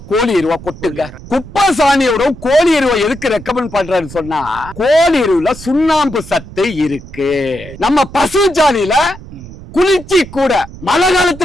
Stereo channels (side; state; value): right; noise; rumble, 16 dB below the sound